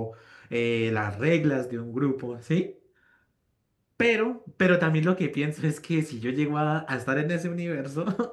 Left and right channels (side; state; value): both; identical; correlation 1.00